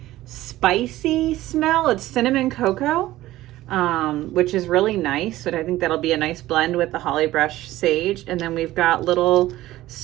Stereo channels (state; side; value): quieter; left; 15.9 dB